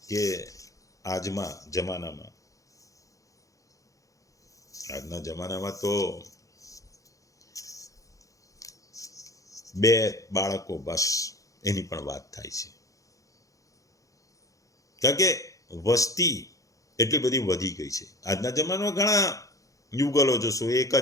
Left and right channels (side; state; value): right; late; 0.16 ms